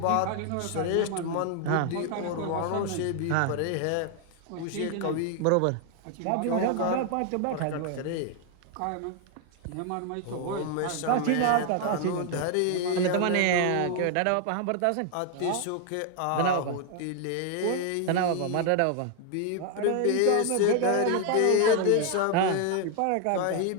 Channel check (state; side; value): different; both; correlation 0.00